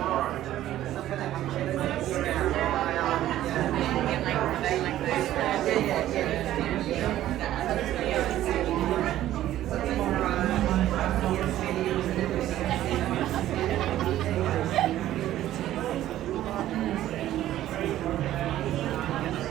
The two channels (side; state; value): left; quieter; 13.4 dB